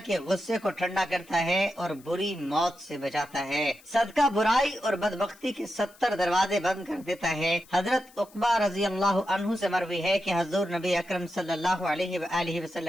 गुस्से को ठंडा करता है और बुरी मौत से बचाता है। सदका बुराई और बदबख्ती के 70 दरवाजे बंद कर देता है। हजरत उक़बा रजी अल्लाह अन्हु से मरवी है कि हजूर नबी अकरम सल्लल्लाहु अलैहि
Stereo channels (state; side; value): noise; left; hiss, 26 dB below the sound